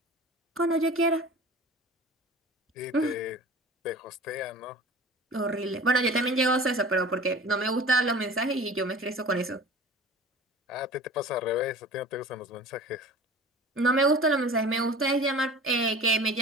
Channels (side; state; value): both; normal; correlation 0.40